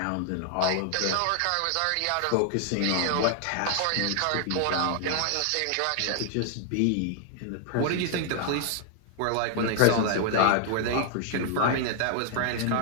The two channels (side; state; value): both; different; correlation 0.00